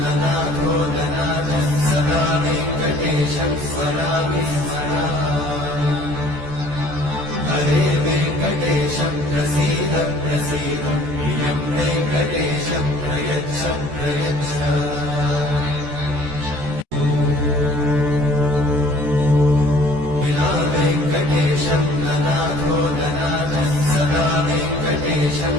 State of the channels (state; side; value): late; left; 14 ms